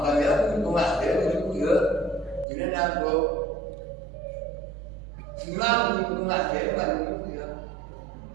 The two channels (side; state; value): left; drops out; at 2.5 s